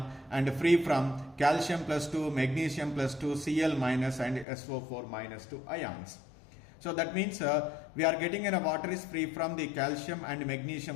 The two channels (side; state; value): right; drops out; at 4.5 s